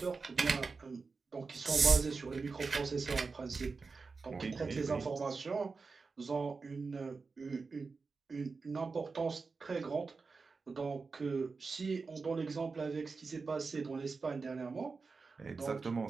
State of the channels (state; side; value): quieter; left; 4.5 dB